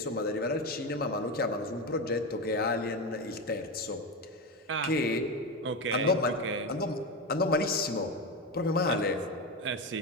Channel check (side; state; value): both; normal; correlation 0.17